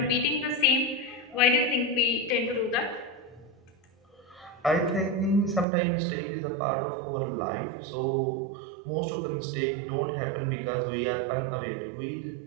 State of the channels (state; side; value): drops out; left; at 5.7 s